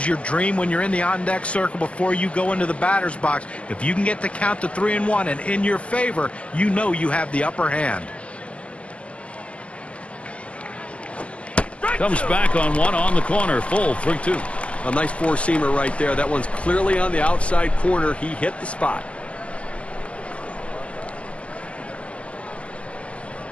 your dream when you're in the on-deck circle before you go into the batter's box. If you can get the count to 3-1 and in your favor, you know you have the upper hand. Comes back on one on the corner. Full 3-2. A nice four-seamer right there. That one's clearly on the outside corner. He hit the spot.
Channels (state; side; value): late; right; 0.059 ms